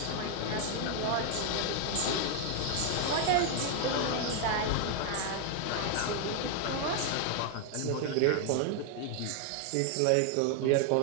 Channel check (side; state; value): both; different; correlation 0.00